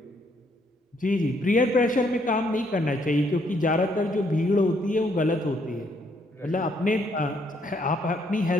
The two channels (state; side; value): normal; both; correlation 0.70